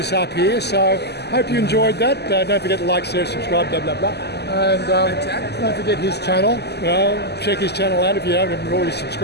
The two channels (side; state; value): right; late; 0.49 ms